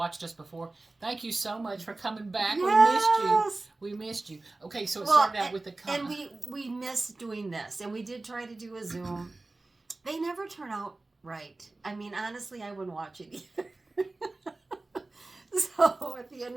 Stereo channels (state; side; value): quieter; left; 3.2 dB